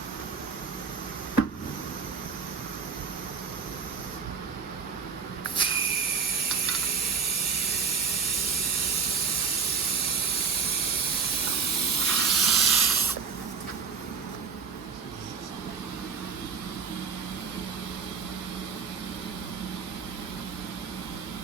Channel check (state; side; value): quieter; left; 5.7 dB